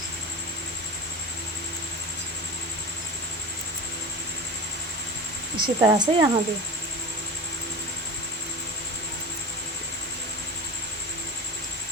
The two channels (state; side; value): normal; both; correlation 0.29